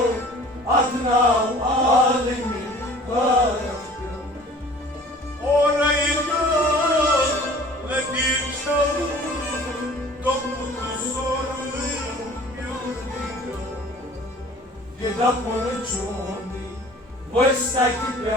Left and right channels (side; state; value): both; normal; correlation 0.48